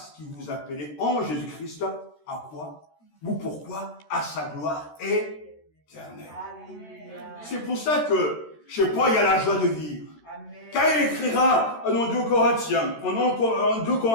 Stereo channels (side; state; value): right; late; 13 ms